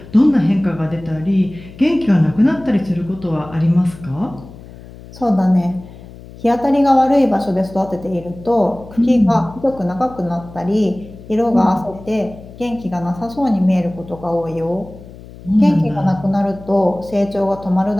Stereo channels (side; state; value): left; noise; hum, 18 dB below the sound